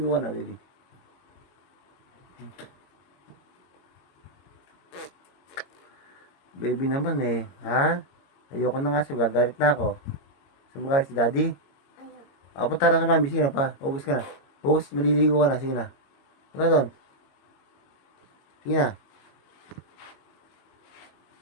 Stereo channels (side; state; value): right; late; 22 ms